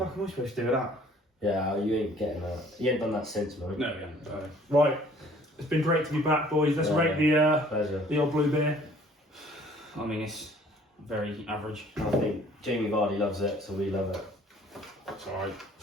am I supposed to do with that?" Yeah, you ain't getting that. You ain't done that since, man. No, yeah. Right, it's been great to be back, boys. Let's Yeah. rate Pleasure. the old blue beer. I mean, it's very average. I think Jamie Vardy loves it, so we love it. It's alright.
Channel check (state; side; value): normal; both; correlation 0.55